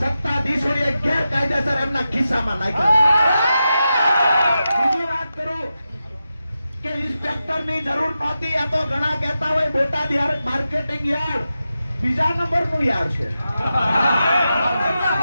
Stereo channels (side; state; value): both; inverted; correlation -0.90